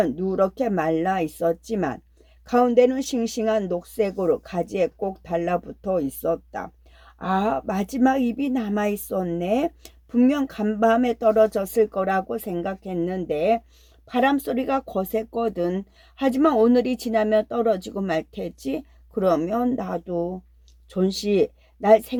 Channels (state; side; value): identical; both; correlation 1.00